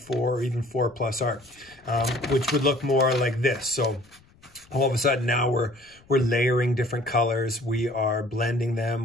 or even 4 plus art, which would look more like this. So all of a sudden now we're layering different colors. We are blending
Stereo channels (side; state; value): left; noise; rumble, 29 dB below the sound